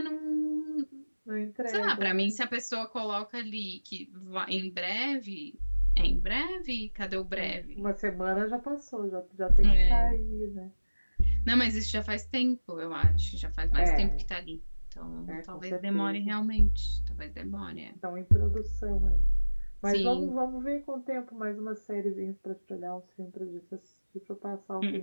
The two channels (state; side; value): inverted; both; correlation -1.00